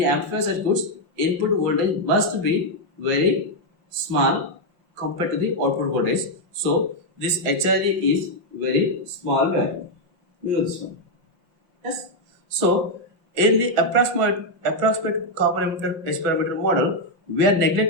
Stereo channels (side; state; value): left; late; 5.7 ms